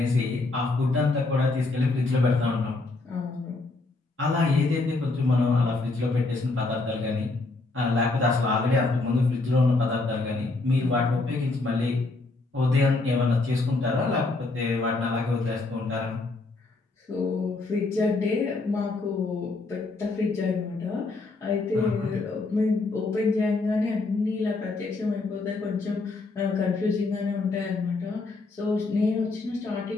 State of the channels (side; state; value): right; quieter; 3.4 dB